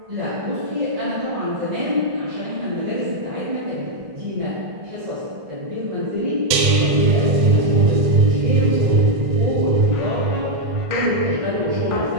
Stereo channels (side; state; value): left; late; 1.5 ms